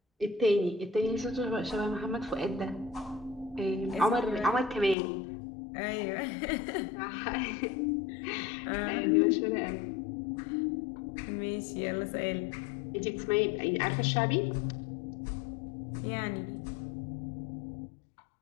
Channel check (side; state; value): right; drops out; at 5.0 s